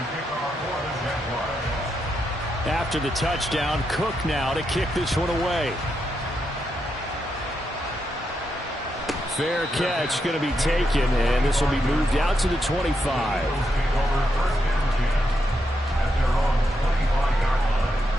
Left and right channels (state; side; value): normal; both; correlation 0.83